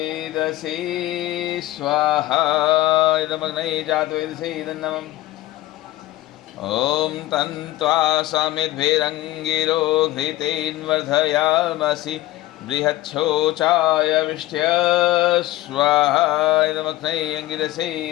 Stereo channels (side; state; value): right; quieter; 16.8 dB